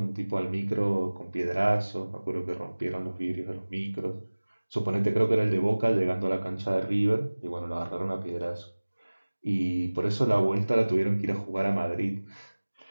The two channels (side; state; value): both; inverted; correlation -1.00